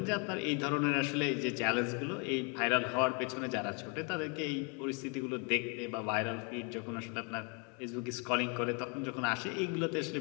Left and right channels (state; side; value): quieter; right; 34.8 dB